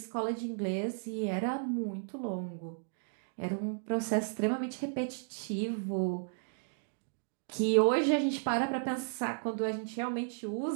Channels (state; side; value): silent; left; digital silence